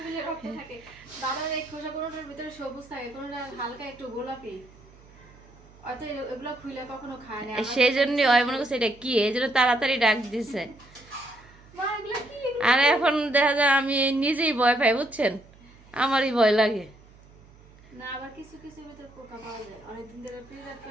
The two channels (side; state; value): right; noise; hum, 25 dB below the sound